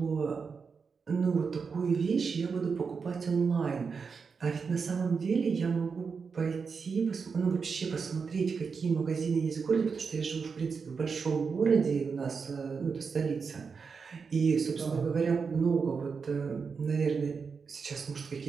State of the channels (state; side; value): quieter; left; 5.4 dB